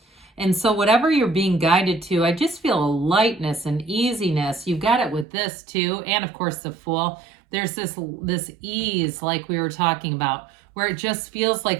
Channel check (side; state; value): left; drops out; at 5.2 s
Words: And so whatever you're being guided to, I just feel a lightness and easiness. You've got it with this too. And of course the Fool. There's this ease like we were talking about, where it just feels